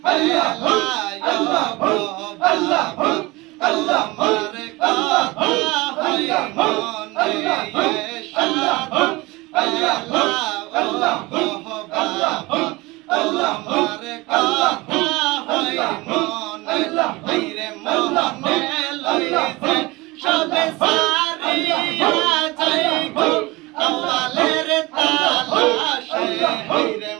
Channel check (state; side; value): quieter; left; 22.4 dB